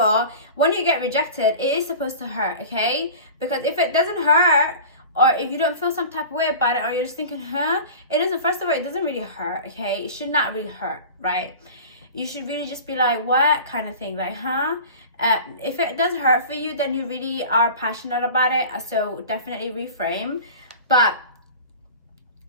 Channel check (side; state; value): both; inverted; correlation -0.37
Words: when you get rejected, it is supposed to hurt, okay? Because if it doesn't hurt, or if you don't feel some type of way about it, or you're just thinking, it doesn't, first of all, it doesn't really hurt, okay? It should not really hurt, right? You should really just be like, what kind of thing, like, if it does hurt for you, then you really are passionate about it, so definitely reframe. But